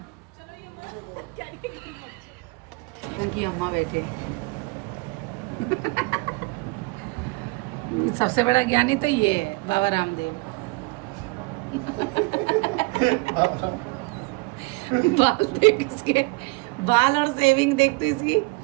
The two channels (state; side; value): quieter; left; 27.1 dB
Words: इनकी अम्मा बैठे। सबसे बड़ा ज्ञानी तो ये है, बाबा रामदेव। बाल देख इसके, बाल और सेविंग देख तो इसकी,